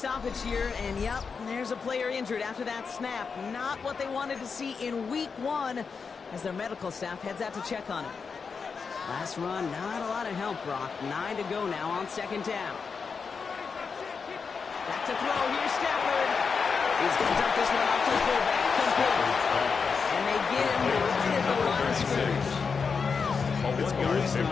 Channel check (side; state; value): right; quieter; 5.4 dB